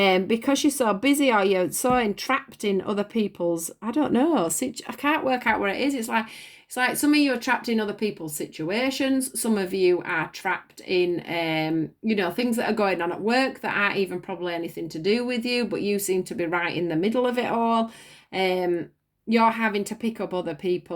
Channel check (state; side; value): identical; both; correlation 1.00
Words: you're so busy or you're so entrapped in other people's, I don't know, I can't work out where it is. It's like some of you are trapped in other people's situations. Some of you are trapped in, you know, things that are going on at work that aren't even probably anything to do with you, but you seem to be right in the middle of it all. You're having to pick up other